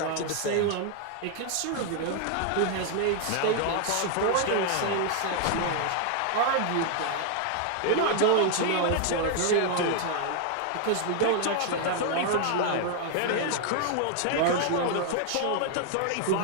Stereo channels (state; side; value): different; both; correlation 0.00